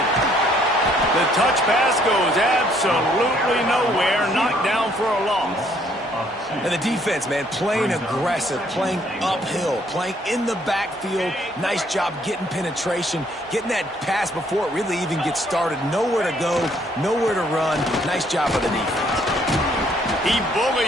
The touch pass goes absolutely nowhere. Knocked down for a loss. And the defense, man, playing aggressive, playing uphill, playing in the backfield. Nice job getting penetration, getting that pass before it really even gets started. Nowhere to go, nowhere to run. Nice job by the defense. He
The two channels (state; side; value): normal; both; correlation 0.65